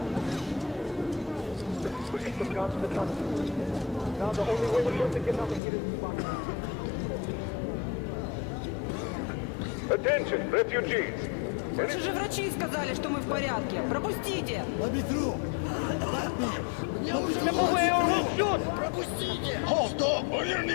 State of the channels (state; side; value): drops out; right; at 5.6 s